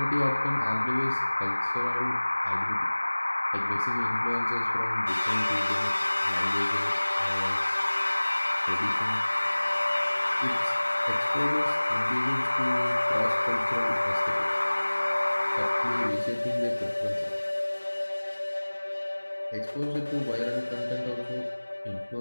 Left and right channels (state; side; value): inverted; both; correlation -1.00